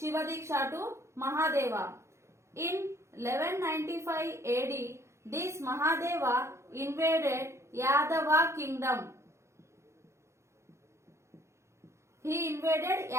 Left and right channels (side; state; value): left; late; 0.13 ms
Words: Diksha to Mahadeva. In 1195 AD, this Mahadeva invaded Yadava kingdom. He invaded